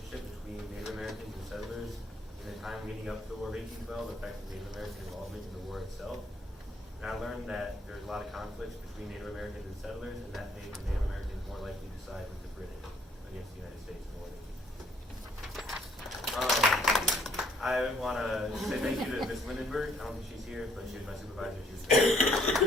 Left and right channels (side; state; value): both; normal; correlation 0.64